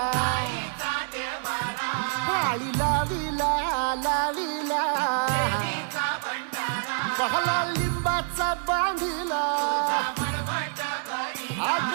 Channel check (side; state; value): left; silent; 60 dB below the other